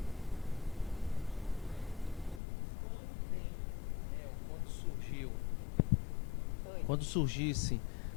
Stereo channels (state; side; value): drops out; right; at 2.4 s